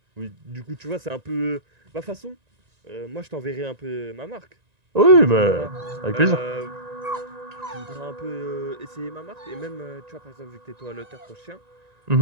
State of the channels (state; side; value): late; left; 1.9 ms